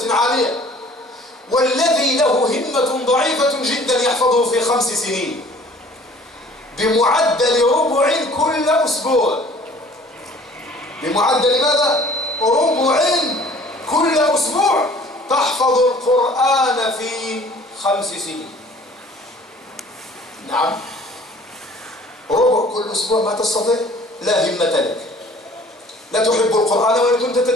عالية. والذي له همة ضعيفة جدا يحفظه في 5 سنين بمعدل ربع كل أسبوع. بمعدل ماذا؟ ربع كل أسبوع تحفظ القرآن في 5 سنين. نعم، ربع كل أسبوع ما تستطيع؟ لا همة لك، لا تحب القرآن وإن كنت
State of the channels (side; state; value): both; normal; correlation 0.51